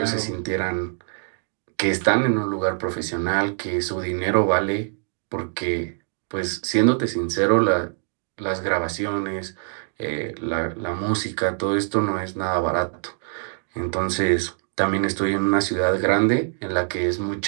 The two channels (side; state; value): left; silent; 63 dB below the other